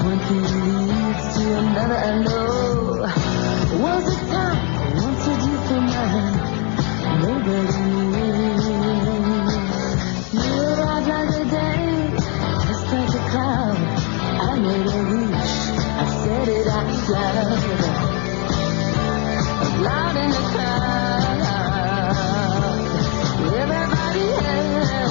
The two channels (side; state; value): right; quieter; 35.6 dB